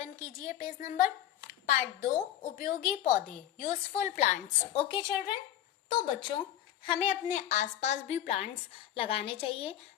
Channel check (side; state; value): right; quieter; 11.7 dB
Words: कीजिए पेज नंबर। पार्ट 2, उपयोगी पौधे, यूजफुल प्लांट्स। ओके चिल्ड्रन, तो बच्चों हमें अपने आसपास भी प्लांट्स लगाने चाहिए।